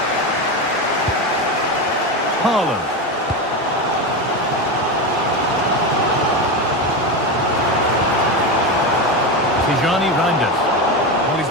Haaland. Tijani Reinders. Well, he's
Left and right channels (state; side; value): normal; both; correlation 0.17